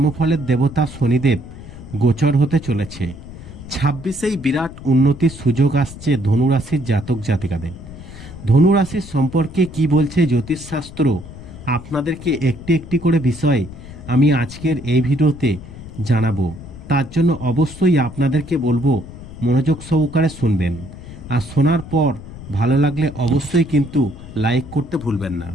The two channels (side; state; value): left; noise; rumble, 15 dB below the sound